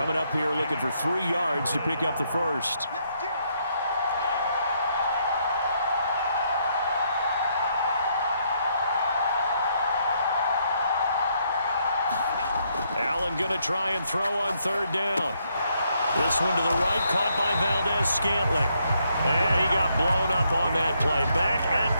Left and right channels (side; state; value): both; inverted; correlation -0.74